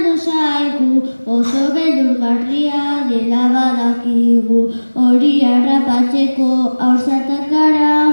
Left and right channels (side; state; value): both; inverted; correlation -1.00